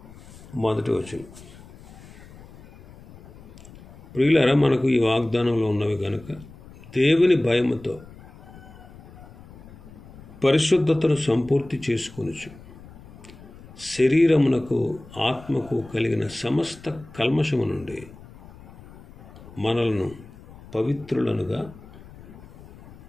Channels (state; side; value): noise; left; rumble, 19 dB below the sound